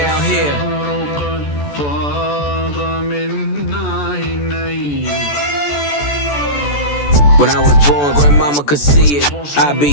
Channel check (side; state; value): right; late; 14 ms